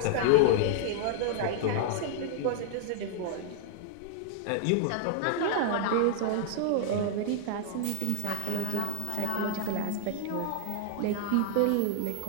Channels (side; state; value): both; different; correlation 0.00